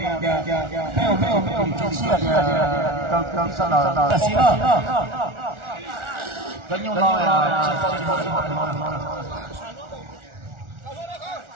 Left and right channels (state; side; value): late; left; 1.4 ms